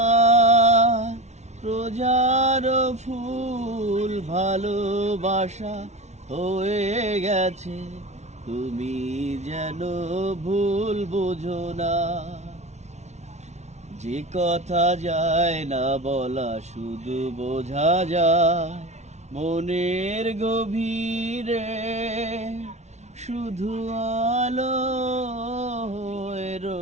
রোজার ফুল ভালোবাসা হয়ে গেছে, তুমি যেন ভুল বুঝো না। যে কথা যায় না বলা শুধু বোঝা যায় মনের গভীরে, শুধু আলো হয়ে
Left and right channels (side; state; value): left; late; 0.32 ms